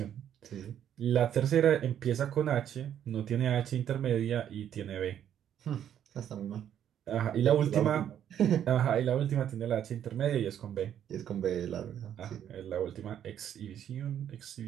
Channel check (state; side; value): quieter; left; 10.0 dB